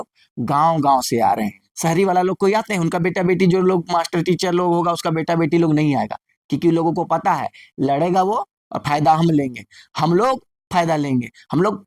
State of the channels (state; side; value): identical; both; correlation 1.00